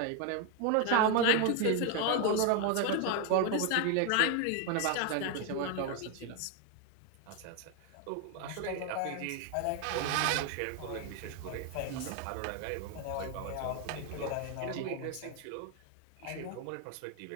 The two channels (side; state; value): both; different; correlation 0.01